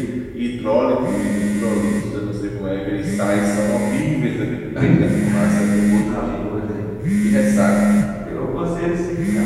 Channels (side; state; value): both; identical; correlation 1.00